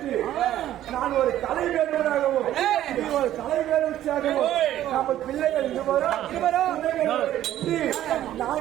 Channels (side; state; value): left; quieter; 12.7 dB